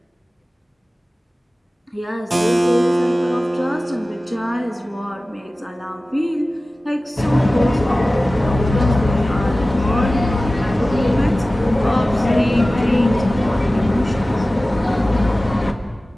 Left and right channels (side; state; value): both; normal; correlation 0.97